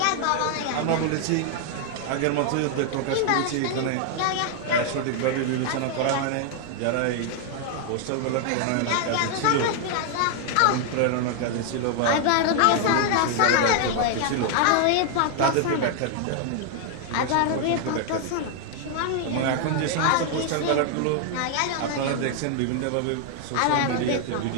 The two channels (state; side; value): different; both; correlation 0.00